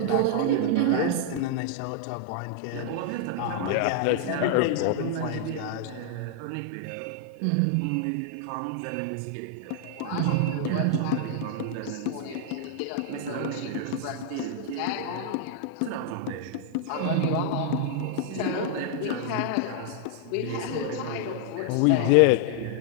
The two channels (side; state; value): both; different; correlation -0.01